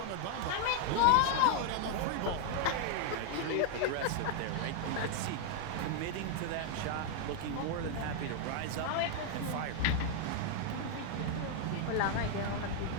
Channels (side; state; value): both; different; correlation 0.00